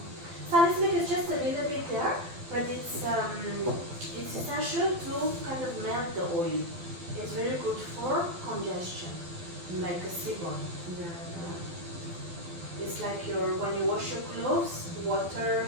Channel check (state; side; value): late; left; 12 ms